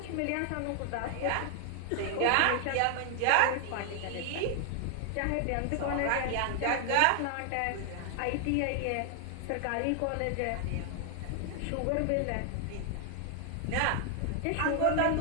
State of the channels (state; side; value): different; both; correlation 0.00